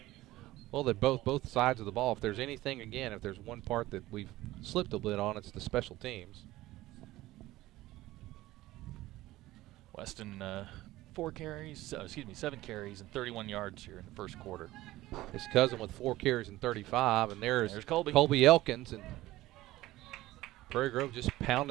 Well, they're both sides of the ball. If there's anything, again, if there's one part that we've slipped a bit on, it's the special teams. Weston, 7 carries and 31 yards here in the first quarter. His cousin with 4 carries and 35, and there's Colby Elkins, and Prairie Grove just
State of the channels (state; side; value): quieter; left; 16.9 dB